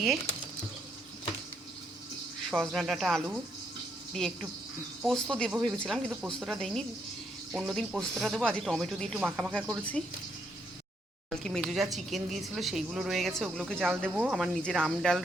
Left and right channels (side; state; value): both; normal; correlation 0.75